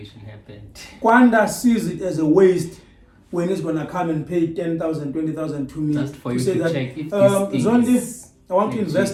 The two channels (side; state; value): both; identical; correlation 1.00